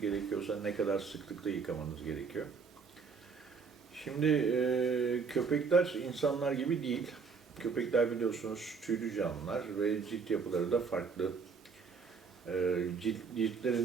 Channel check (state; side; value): quieter; left; 5.3 dB